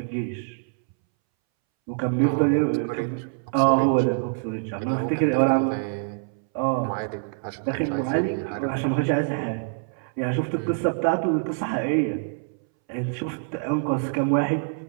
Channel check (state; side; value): silent; left; 62 dB below the other